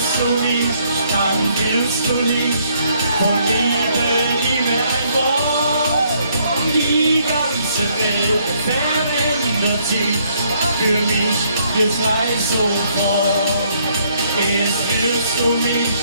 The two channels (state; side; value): inverted; both; correlation -0.68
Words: du mich, dann willst du nicht. Von Liebe, Liebe ein Wort. Die ganze Welt verändert sich. Für mich jetzt gleich sofort. Erst willst du mich,